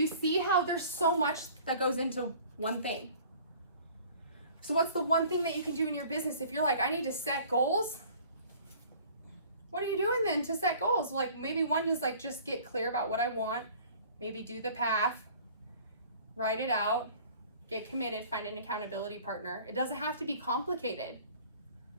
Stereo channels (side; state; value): both; inverted; correlation -0.50